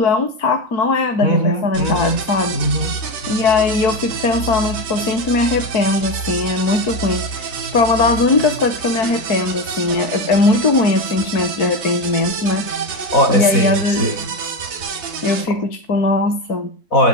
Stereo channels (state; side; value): late; right; 4.0 ms